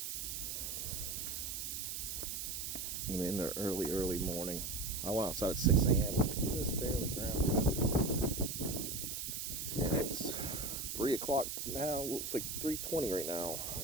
And in the early morning. I went outside at 6 a.m. It was just barely ground covered. And it's 3 o'clock now. Looks like 3:20 right now.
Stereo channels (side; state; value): right; noise; hiss, 4 dB below the sound